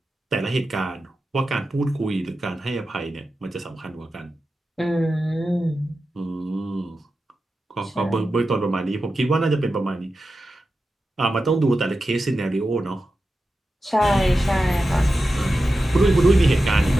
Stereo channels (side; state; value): both; normal; correlation 0.92